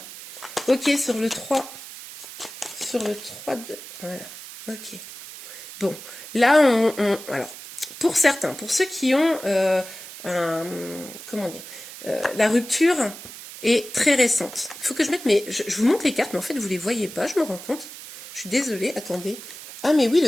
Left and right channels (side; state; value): right; noise; hiss, 14 dB below the sound